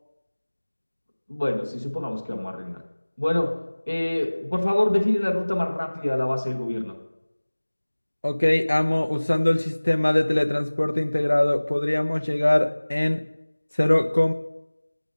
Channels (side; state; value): both; inverted; correlation -1.00